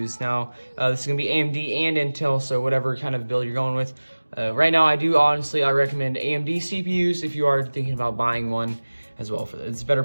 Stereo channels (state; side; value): inverted; both; correlation -1.00